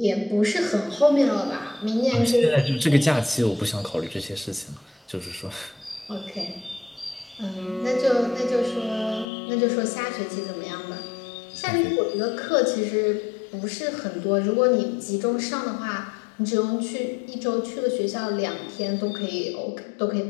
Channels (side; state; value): right; drops out; at 9.2 s